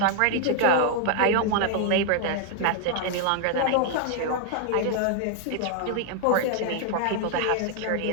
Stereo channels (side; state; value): both; different; correlation 0.00